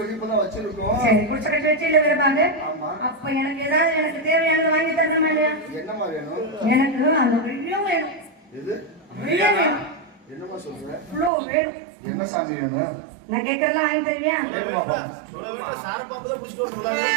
இப்பதான் வச்சிருக்கோம். சரி குடிசை கட்டி வச்சு இல்ல விரும்பாங்க. ஆமா. அப்ப எனக்கு ஏதாவது எனக்கு தேவையானது வாங்கி தரணுமா இல்லையா? என்னம்மா வேணும்? எனக்கு அந்த வெள்ளியும் வேணும். எது? வெள்ளியும் வேணும். என்னம்மா சொல்ற? இவ்வளோ வேணும். என்ன சாமி வேணும்? நான் கேட்கறதெல்லாம் வாங்கி தருவியா?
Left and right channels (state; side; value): drops out; left; at 11.3 s